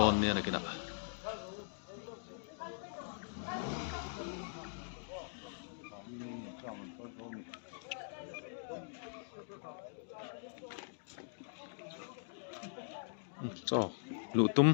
ne na kina cho lutum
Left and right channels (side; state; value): right; silent; digital silence